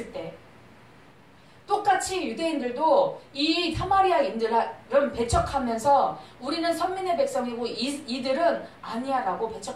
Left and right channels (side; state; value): both; identical; correlation 1.00